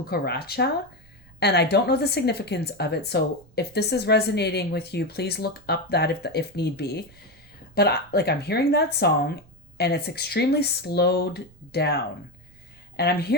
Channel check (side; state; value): right; noise; rumble, 27 dB below the sound